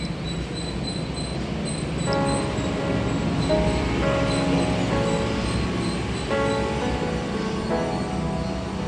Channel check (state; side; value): identical; both; correlation 1.00